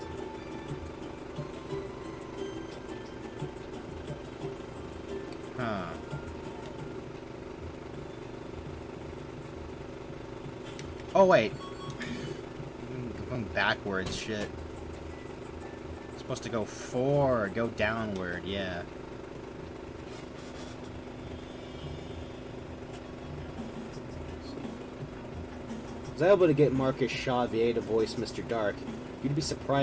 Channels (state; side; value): identical; both; correlation 1.00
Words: Huh. Oh wait. I'm going backwards, shit. It's supposed to go forward, go downward, yeah. I was able to get Marcus Shaw VA to voice Mr. Dark. You'd be